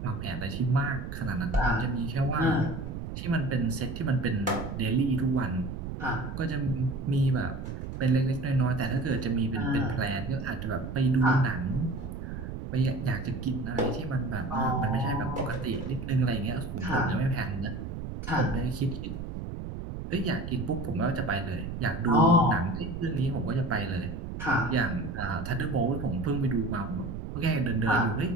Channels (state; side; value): noise; right; rumble, 7 dB below the sound